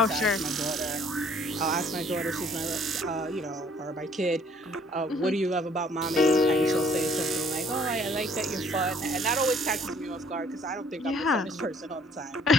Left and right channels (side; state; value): both; normal; correlation 0.60